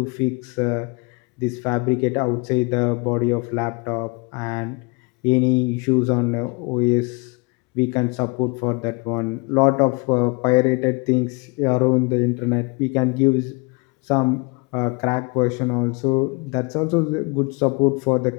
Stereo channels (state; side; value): quieter; right; 30.0 dB